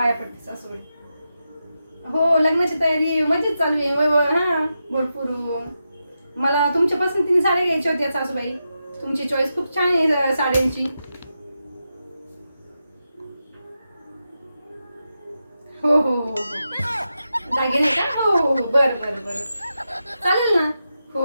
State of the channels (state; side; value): inverted; both; correlation -0.88